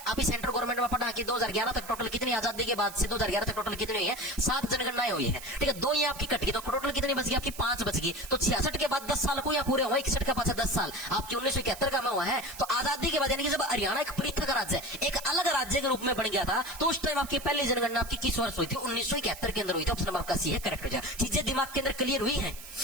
अभी सेंट्रल गवर्नमेंट में पढ़ा कि 2011 तक टोटल कितनी आजादी के बाद से 2011 तक टोटल कितनी हुई है 7 जनगणनाएं हुई है ठीक है 2 ये आपकी कट गई तो टोटल कितनी बच गई आपकी 5 बच गई तो 66 के बाद 10 साल को या पूरे हुए 61 का पाछा 10 साल आपकी 1971 का में हुआ है तो आजादी के बाद यानी कि जब हरियाणा एक पृथक राज्य एक अलग राज्य के रूप में बन गया था तो उस टाइम आपकी पहली जनगणना आपकी किस वर्ष हुई थी 1971 के अंदर हुई थी ऑप्शन नंबर आपका सी है करेक्ट हो जाए चीजें दिमाग के अंदर क्लियर हुई है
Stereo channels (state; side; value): noise; right; hiss, 14 dB below the sound